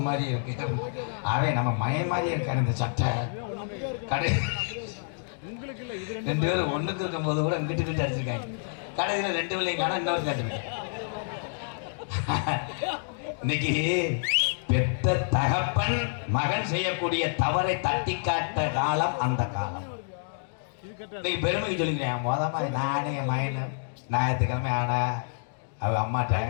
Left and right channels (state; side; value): silent; right; digital silence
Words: மாதிரி இருக்கு, அவன் நம்ம மயம் மாதிரி இருக்காரு இந்த சட்டை. கடைசி 2 பேரும் ஒண்ணுக்கு இருக்கும் போது கூட இங்கிட்டு கிட்ட அடிச்சிருக்காங்க. கடைசியில் 2 பிள்ளைங்க காண இன்னொரு கேட்டுருக்கேன். இன்னைக்கு பெத்த தகப்பன் மகன் செய்யக்கூடிய தவறை தட்டி காட்ட காலம் அந்த காலம். இன்னைக்கு பெருமைக்கு சொல்லிக்கிறேன். மொதமா நானே என் மகன் ஞாயிற்றுக்கிழமை ஆனா அவ அம்மாட்ட